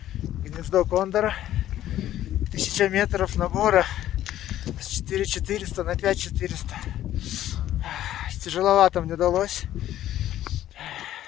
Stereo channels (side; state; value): right; quieter; 12.7 dB